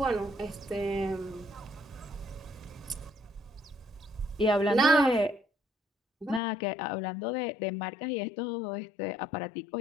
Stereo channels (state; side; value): drops out; right; at 6.4 s